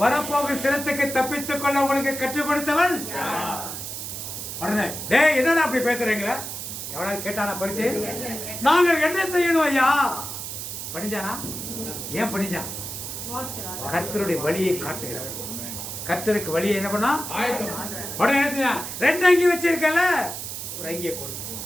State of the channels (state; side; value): noise; right; hiss, 7 dB below the sound